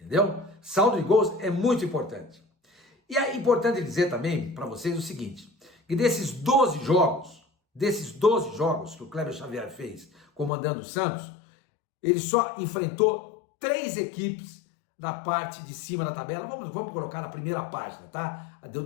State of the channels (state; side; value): drops out; right; at 10.5 s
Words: Entendeu? Saldo de gols é muito importante. E é importante dizer também para vocês o seguinte, que desses 12 jogos que o Kleber Xavier fez comandando o Santos, ele só enfrentou 3 equipes da parte de cima da tabela. Vamos colocar na primeira página, tá?